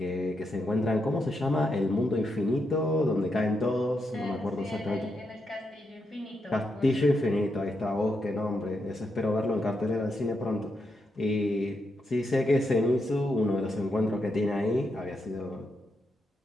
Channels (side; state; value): both; normal; correlation 0.83